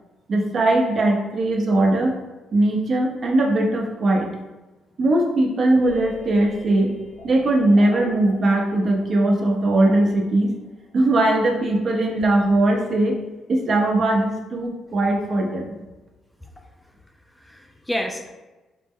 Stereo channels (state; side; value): normal; both; correlation 0.88